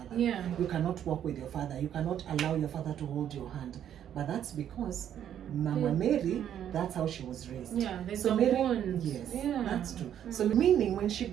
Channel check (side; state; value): left; quieter; 10.0 dB